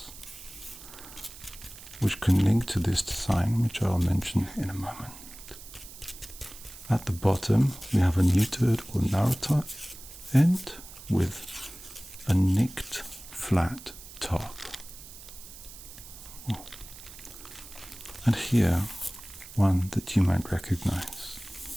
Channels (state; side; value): noise; right; hiss, 16 dB below the sound